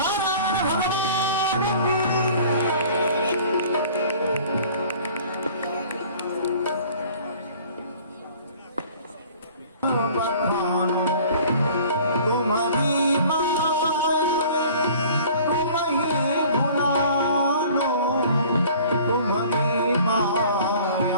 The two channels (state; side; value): inverted; both; correlation -0.49